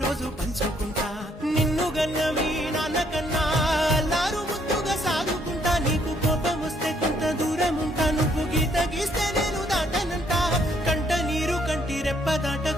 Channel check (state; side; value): normal; both; correlation 0.68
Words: పంచుకుంటా. నిన్ను గన్న మీ నాన్న కన్నా